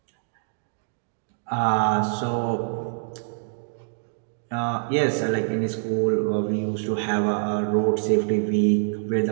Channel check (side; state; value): left; silent; digital silence